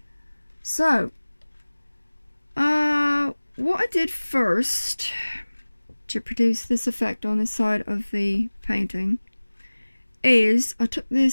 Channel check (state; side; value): inverted; both; correlation -1.00